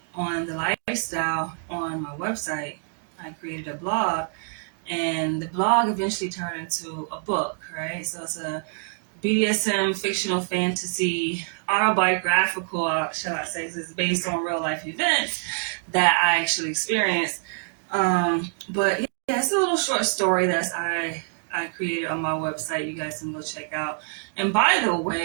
on the lifestyle on my website. I created a blog, and the blog eventually turned into a book, right? So it's a BDSM fictional fantasy autobiographical, shall I say, it's based on real life events that I actually experienced. But yeah, it's a little short story that I created on my website. You guys can go check out. And by the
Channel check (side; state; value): left; silent; 61 dB below the other